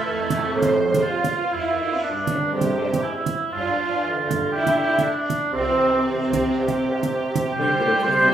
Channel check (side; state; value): both; normal; correlation 0.81